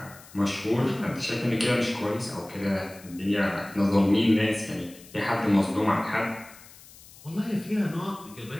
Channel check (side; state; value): left; noise; hiss, 21 dB below the sound